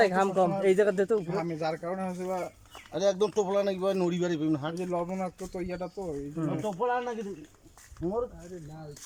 ঘাম কম, এই জায়গা দে তো উপরে। ঘামে যার কারণে হচ্ছে বা আরে একদম টোপলা নাকি ভাই নড়ি বাড়ি পেন হাট যে লবণাক্ত তো ইয়াটা তো এই জন্য টোপলা নাকি মোর আরে না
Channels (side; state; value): both; identical; correlation 1.00